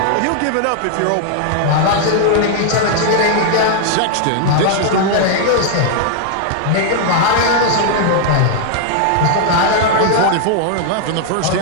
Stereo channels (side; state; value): both; different; correlation 0.00